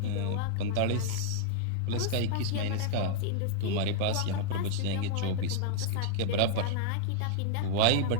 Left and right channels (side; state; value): both; different; correlation -0.01